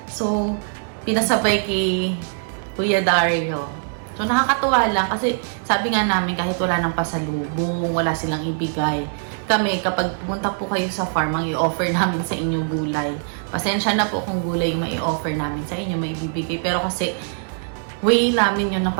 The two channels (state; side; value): silent; left; 64 dB below the other